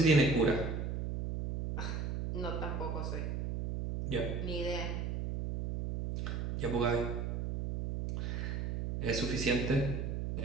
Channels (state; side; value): noise; right; hum, 2 dB below the sound